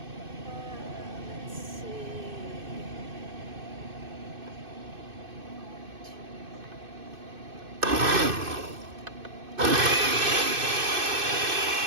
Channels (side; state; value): left; late; 2.6 ms